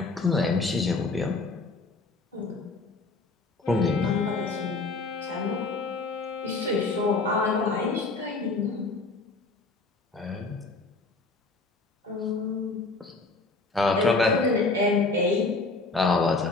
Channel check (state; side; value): quieter; right; 3.6 dB